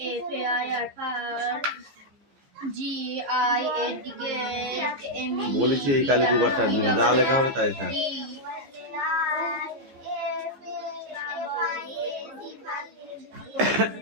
বলেছি এই কালি দুবার টানবি না, যা লেখা হবে তাই থাক।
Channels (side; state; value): left; late; 15 ms